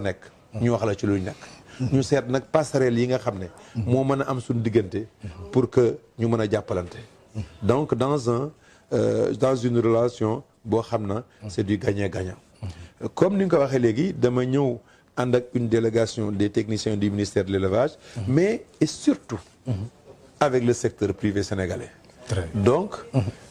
ñu wax la ci luñ nekk ñu seet nag passerelle yi nga xam ne moo mën a am suñu diggante pour que ñu mën a jàppalante donc dans une relation boo xam na c'est du gagnant-gagnant comme ni nga ko waxee léegi dama ñëw ànd ak une délégation des techniciens du ministère de l'élevage mais et surtout avec le secteur privé sénégalais donc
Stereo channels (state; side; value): identical; both; correlation 1.00